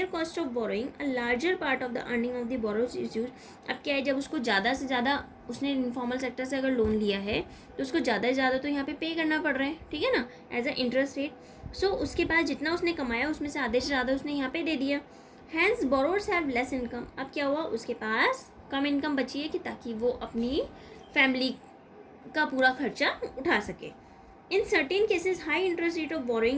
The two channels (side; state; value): both; identical; correlation 1.00